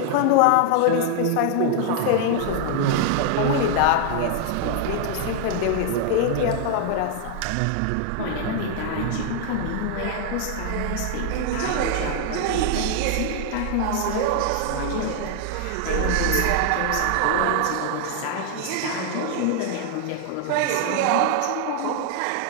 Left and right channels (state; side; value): different; both; correlation 0.00